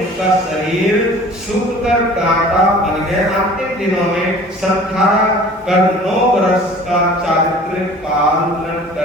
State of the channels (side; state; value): both; normal; correlation 0.46